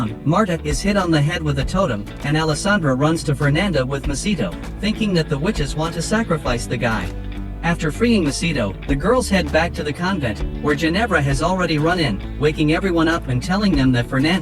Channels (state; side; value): identical; both; correlation 1.00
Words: Marta is hit on the head with a totem, and Alessandra runs to Fernanda with Macedo, thinking that the witches want to sacrifice the guy. After freeing Macedo, the girls head back to the convent, where Ginevra has already run in, waking everyone up and telling them that